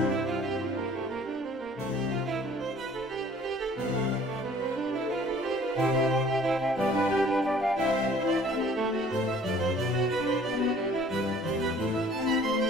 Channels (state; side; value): normal; both; correlation 0.54